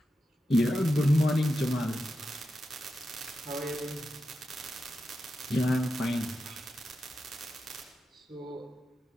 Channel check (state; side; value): normal; both; correlation 0.89